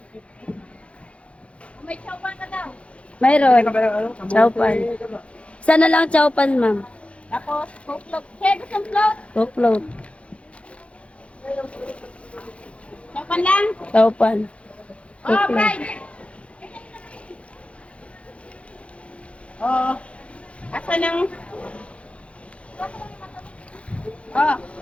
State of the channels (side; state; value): right; late; 0.061 ms